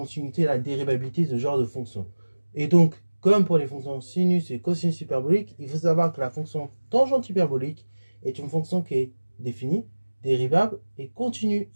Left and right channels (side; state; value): both; inverted; correlation -1.00